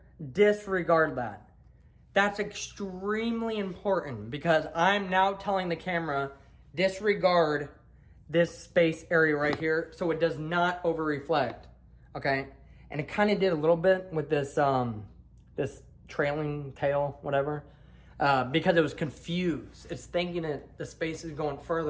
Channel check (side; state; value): both; identical; correlation 1.00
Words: Disregard that. That's extremely important because I'm now telling the camera, disregard this space area right here so it does not over reflect, okay? And it kind of did a little bit with this this trailing tail, whatever, because it was confused. It's thinking that the space is going